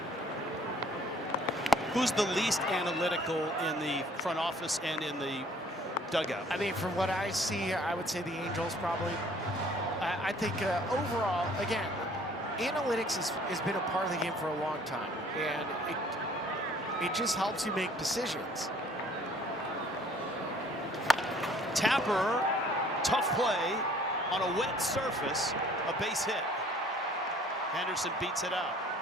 Who's the least analytical in the front office and in the dugout? I mean, from what I see, I would say the Angels probably. I think overall, again, analytics has been a part of the game for a long time, and it just helps you make decisions. Tapper, tough play on a wet surface, a base hit. Henderson beats it out.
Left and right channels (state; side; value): normal; both; correlation 0.56